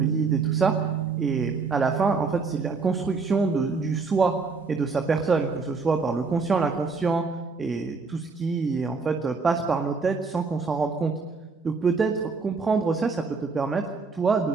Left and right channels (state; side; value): quieter; left; 4.5 dB